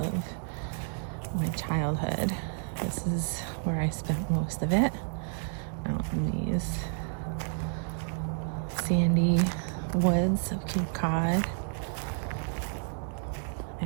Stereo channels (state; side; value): silent; left; 57 dB below the other